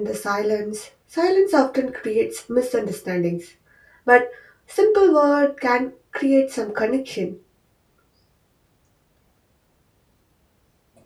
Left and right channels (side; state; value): both; identical; correlation 1.00